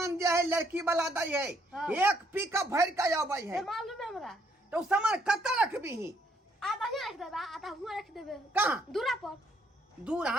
जे है लड़की वाला दै है हाँ। एक पिकअप भर के आबै है ये मालूम है हमरा तो सामान कत रखबी आधा ही रख देबे आधा हुआ रख देबे कहाँ दूरा पर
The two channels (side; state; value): both; normal; correlation 0.69